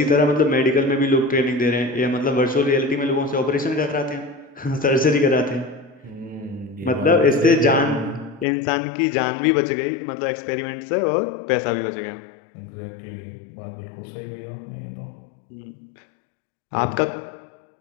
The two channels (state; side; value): drops out; right; at 8.5 s